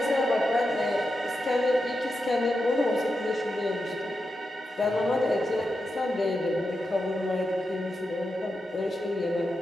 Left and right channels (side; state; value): both; normal; correlation 0.88